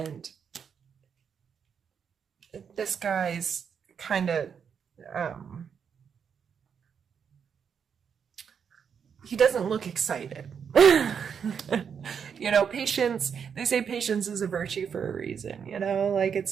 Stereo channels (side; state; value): left; quieter; 7.1 dB